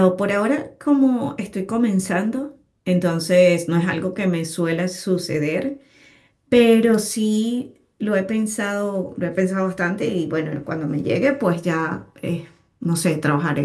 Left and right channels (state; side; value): identical; both; correlation 1.00